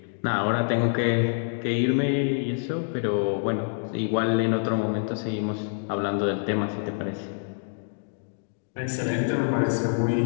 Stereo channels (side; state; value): right; silent; digital silence